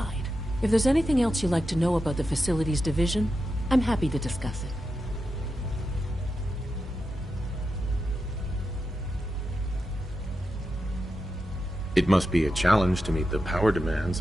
If there's anything else you'd like to know about the facilities division, I'm happy to discuss it. It must be a challenge to meet the power demands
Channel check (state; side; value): normal; both; correlation 0.88